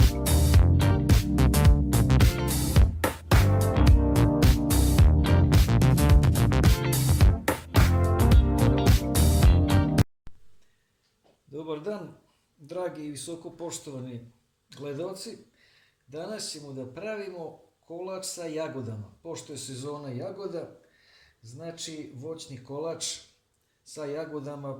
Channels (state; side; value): identical; both; correlation 1.00